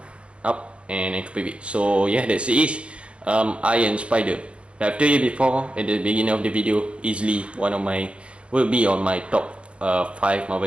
up, and ankle pivot. So yeah, that's it. Iron Spider. I've told you before at the beginning of the video, easily will be on my top 5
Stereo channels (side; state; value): left; late; 0.059 ms